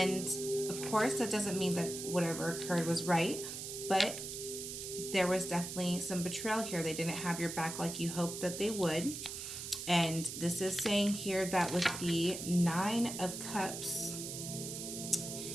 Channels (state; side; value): noise; right; hiss, 7 dB below the sound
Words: of course, that doesn't mean that whatever occurred was right, but there was definitely some betrayal here. They didn't have your back like you hoped that they would. And this is saying here that with the Nine of Cups